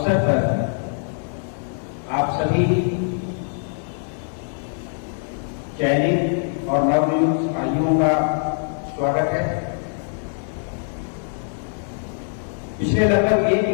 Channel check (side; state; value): right; silent; digital silence